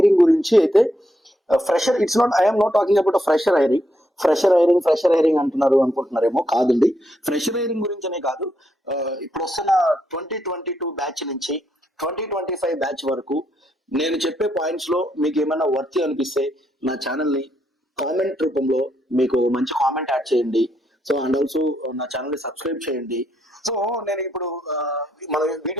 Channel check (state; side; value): normal; both; correlation 0.78